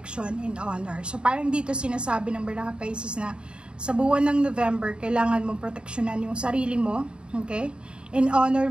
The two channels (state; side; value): late; left; 0.053 ms